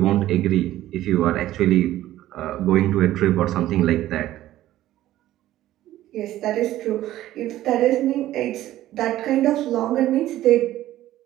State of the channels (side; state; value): left; quieter; 14.2 dB